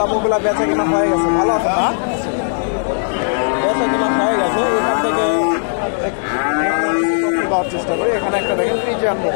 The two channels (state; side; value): silent; right; digital silence